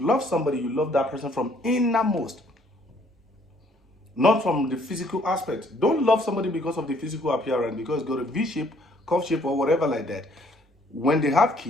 somebody, you love that person from innermost, not from the physical aspect. Don't love somebody because of the physical appearance, because got a V shape, curve shape, or whatever like that. When they have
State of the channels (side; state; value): both; normal; correlation 0.63